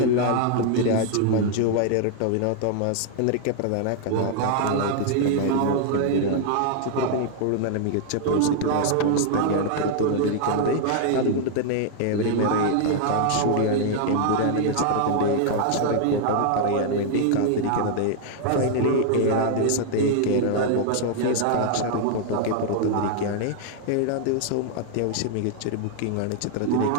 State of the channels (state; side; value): different; both; correlation 0.00